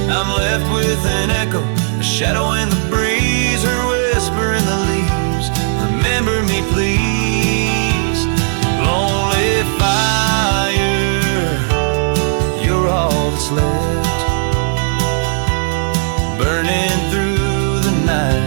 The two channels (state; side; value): silent; left; 67 dB below the other